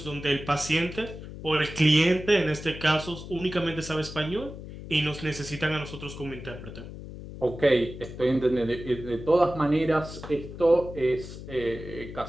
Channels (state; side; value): noise; left; hum, 12 dB below the sound